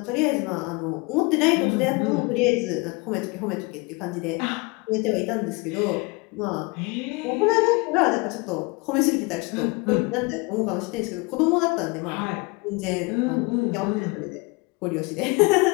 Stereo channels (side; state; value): right; quieter; 26.8 dB